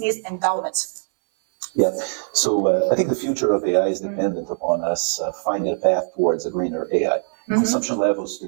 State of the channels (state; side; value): silent; left; digital silence